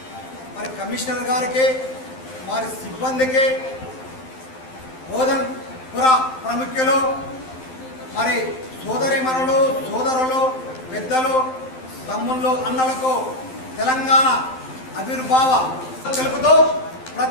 మరి కమిషనర్ గారికి మరి సిబ్బందికి బోధన్పుర ప్రముఖులు మరి సోదరిమణులు సోదరులు పెద్దలు తమ్ముళ్ళు అన్నలకు తెలంగాణ ఆవిర్భావ తెలుపుతూ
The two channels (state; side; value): late; right; 12 ms